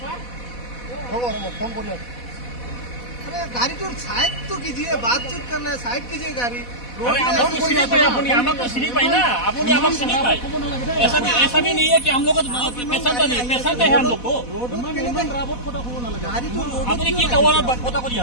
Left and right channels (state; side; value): late; right; 4.1 ms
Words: হ'ব ফোন কৰি আছে अरे गाड़ी तो साइड तो कीजिए बातचीत करना है साइड कीजिए गाड़ी ऐसा भी नहीं है कि हम लोग पैसा नहीं पैसा है हम लोग को गाड़ी तो अपनी की टावर पता करी